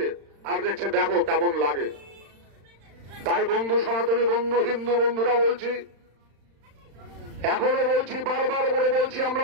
আর দেখছে, দেখো কেমন লাগে। তাই বন্ধু, সনাতনী বন্ধু, হিন্দু বন্ধুরা বলছি, এখনো বলছি, বারবার করে বলছি, আমরা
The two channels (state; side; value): late; left; 35 ms